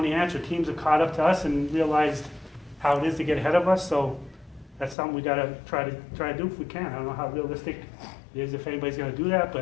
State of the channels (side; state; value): right; drops out; at 5.0 s